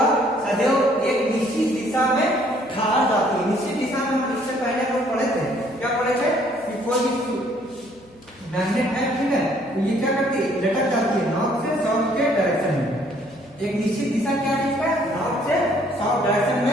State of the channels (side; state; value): left; noise; hum, 27 dB below the sound